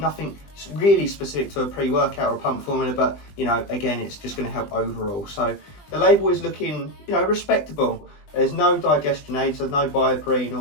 Nothing really specific to a pre-workout or a pump formula, but, you know, again, it's just going to help overall. So the label is looking, you know, respectable. There's no digestion aids, so no bioperine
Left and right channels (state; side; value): late; right; 20 ms